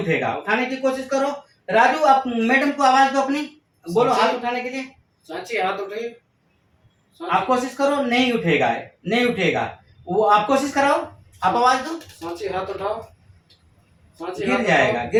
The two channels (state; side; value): identical; both; correlation 1.00